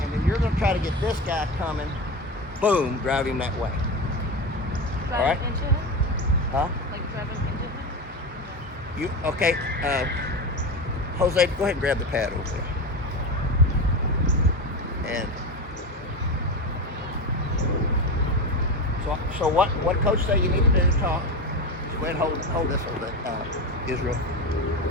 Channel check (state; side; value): normal; both; correlation 0.21